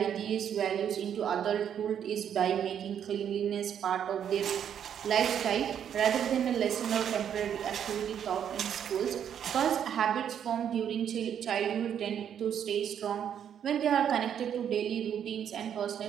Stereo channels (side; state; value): left; quieter; 8.9 dB